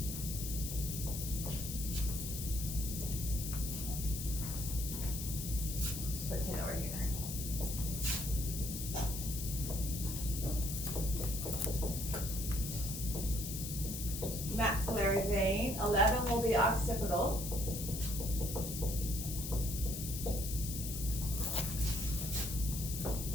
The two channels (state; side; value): noise; left; hiss, 6 dB below the sound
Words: put 10 over here. Maxillary vein. 11 will be occipital.